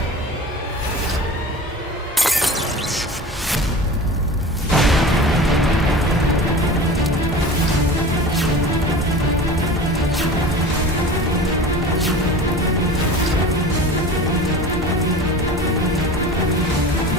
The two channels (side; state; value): both; normal; correlation 0.36